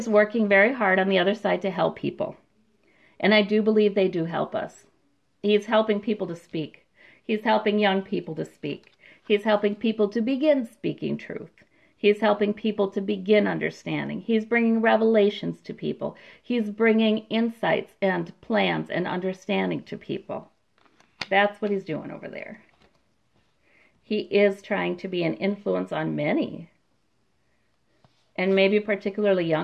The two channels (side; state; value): both; identical; correlation 1.00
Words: working very hard on the other side to help people. And I do believe they do help us. He's helping people to speak. He's helping young people to speak. He's helping people to begin speaking truth. He's helping people to begin understanding. He's bringing revelations to people. He's bringing insights and plans and understanding to people. That's what he's doing over there. He is trying to be an influence on many, and maybe particularly